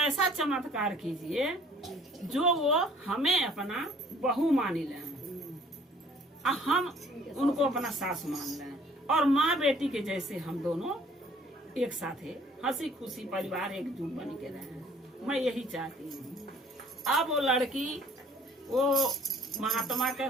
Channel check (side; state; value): both; normal; correlation 0.56